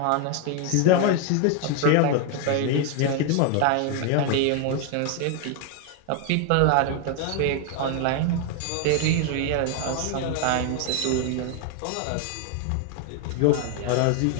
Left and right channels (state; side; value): different; both; correlation 0.00